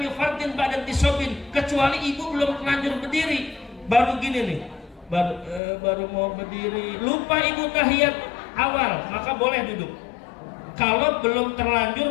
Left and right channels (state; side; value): drops out; right; at 5.6 s